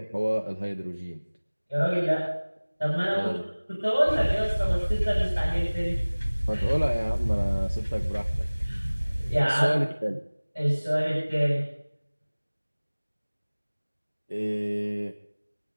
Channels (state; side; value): inverted; both; correlation -1.00